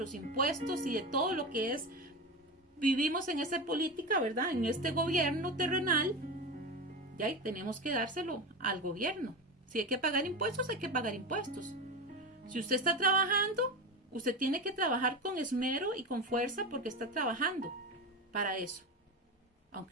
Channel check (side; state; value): both; normal; correlation 0.22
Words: impuestos y de todo lo que es, vivimos en esa política, ¿verdad? En este gobierno terrenal, ya tenemos que dárselo al gobierno. Si hay que pagar impuestos, hay que pagar impuestos. Si usted está trabajando, usted tiene que trabajar con esmero y con fuerza, porque está trabajando para eso.